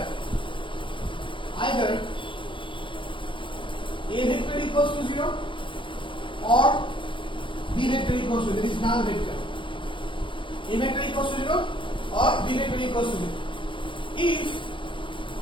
either a vector equals to 0 or b vector equals to 0, that is null vector. A vector equals to 0 or b vector equals to 0. If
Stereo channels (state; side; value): late; right; 0.24 ms